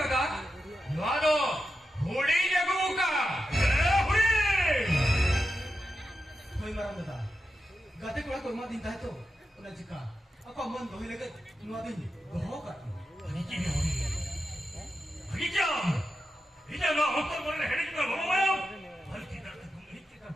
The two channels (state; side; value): normal; both; correlation 0.89